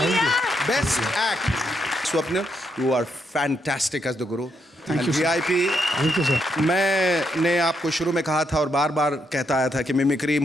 Best act. Swapnil, you are fantastic as the guru. Thank you, sir. VIP. Thank you sir. मैंने आपको शुरू में कहा था और बार बार कहता आया था कि मिमिक्री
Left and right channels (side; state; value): both; normal; correlation 0.78